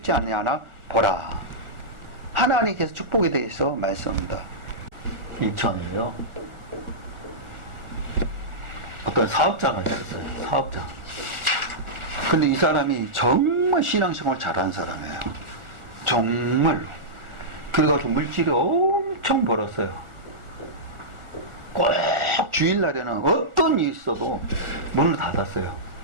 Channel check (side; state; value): left; late; 1.4 ms